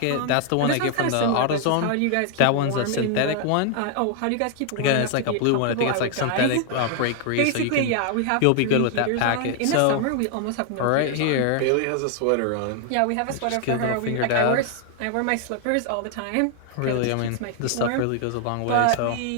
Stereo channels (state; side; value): different; both; correlation 0.00